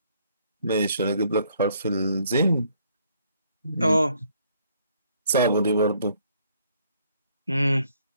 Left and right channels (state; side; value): inverted; both; correlation -0.66